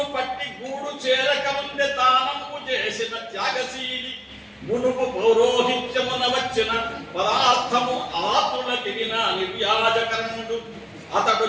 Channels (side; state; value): both; identical; correlation 1.00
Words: పట్టి గూడు చేరకముందే దానము చేసిన త్యాగశీలి మునుపు పౌరోహిత్యమున వచ్చిన పదార్థము ఆతులకిన నిర్యాజకరణుడు అతడు